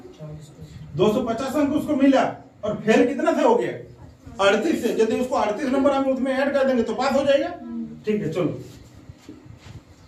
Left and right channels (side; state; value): both; identical; correlation 1.00